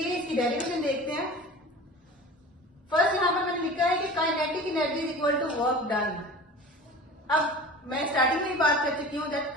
इसकी डेरिवेशन देखते हैं. फर्स्ट यहां पर मैंने लिखा है कि kinetic energy is equal to work done. अब मैं स्टार्टिंग में ही बात कर चुकी हूँ that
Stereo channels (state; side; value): normal; both; correlation 0.37